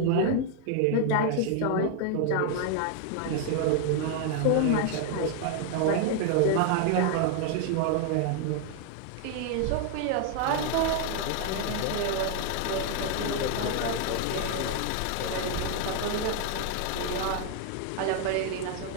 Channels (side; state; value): both; different; correlation 0.00